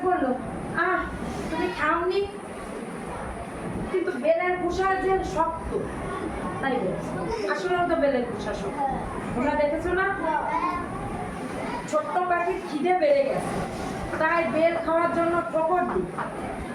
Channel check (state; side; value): identical; both; correlation 1.00